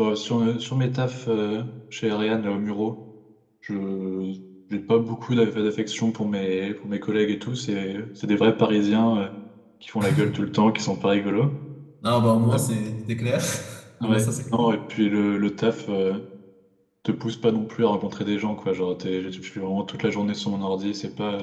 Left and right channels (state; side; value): identical; both; correlation 1.00